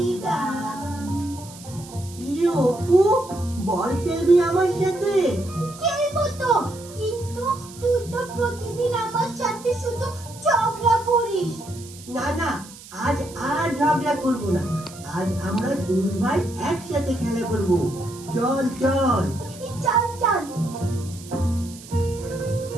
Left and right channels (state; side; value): noise; right; hiss, 18 dB below the sound